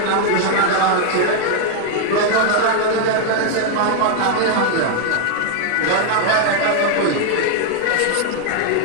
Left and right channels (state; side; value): different; both; correlation 0.00